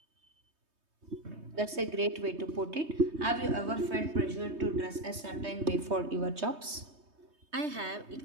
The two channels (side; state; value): left; late; 3.2 ms